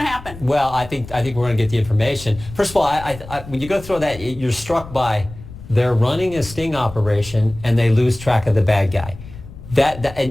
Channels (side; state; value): left; noise; rumble, 15 dB below the sound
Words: to happen? Well, I think we're going to get the information. First of all, when you go through that, you're struck by they're running a sting operation and they lose track of the bad guy.